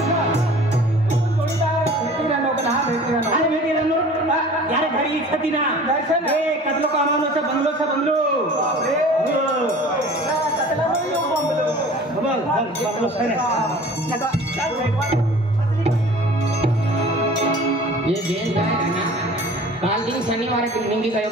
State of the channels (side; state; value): both; normal; correlation 0.44